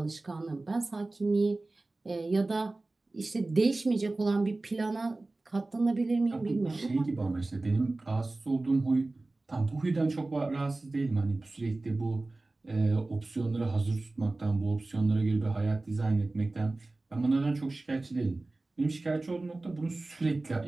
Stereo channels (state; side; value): quieter; left; 3.1 dB